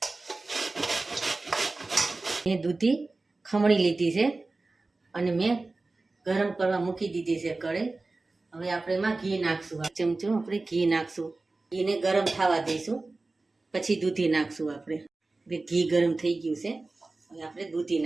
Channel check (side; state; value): left; quieter; 3.3 dB